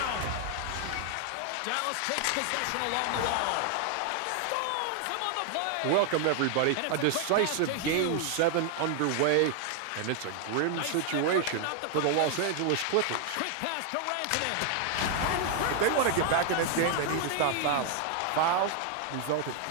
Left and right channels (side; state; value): both; different; correlation 0.00